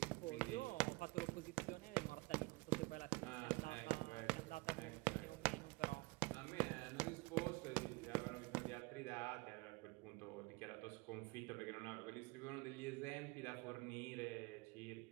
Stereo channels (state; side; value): quieter; left; 25.9 dB